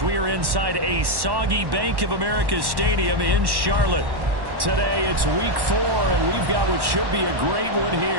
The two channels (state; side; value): late; left; 1.1 ms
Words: we are inside a soggy Bank of America Stadium in Charlotte. Today it's week 4, and we've got what should be a great one